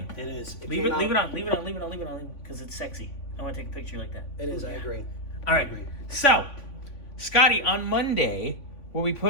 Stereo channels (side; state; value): right; late; 3.5 ms